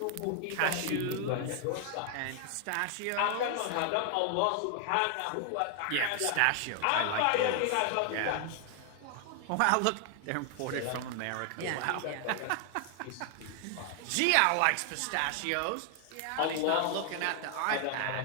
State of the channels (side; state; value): both; different; correlation 0.00